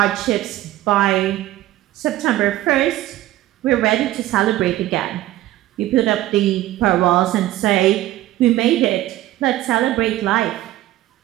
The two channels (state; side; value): quieter; left; 15.2 dB